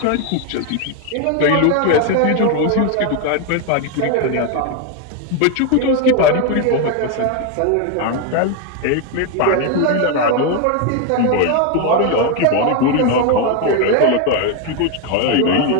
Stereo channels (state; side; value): different; both; correlation 0.01